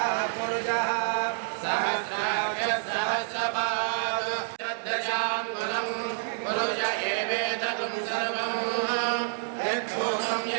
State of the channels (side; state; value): left; silent; digital silence